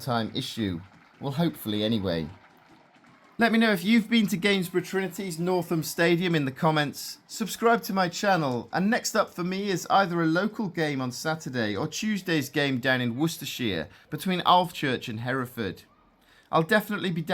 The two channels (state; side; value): identical; both; correlation 1.00